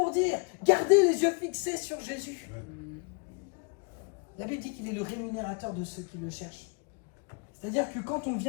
dire, gardez les yeux fixés sur Jésus. La Bible dit qu'il est le rémunérateur de ceux qui le cherchent. C'est-à-dire que quand on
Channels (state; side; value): quieter; right; 34.7 dB